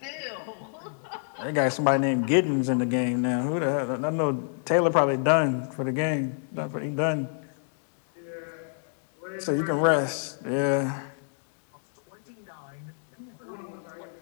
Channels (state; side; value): silent; right; digital silence